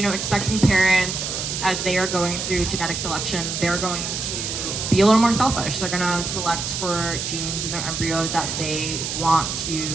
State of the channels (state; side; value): noise; right; hiss, 4 dB below the sound